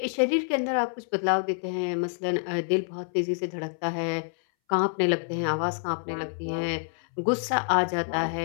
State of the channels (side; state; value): right; silent; 60 dB below the other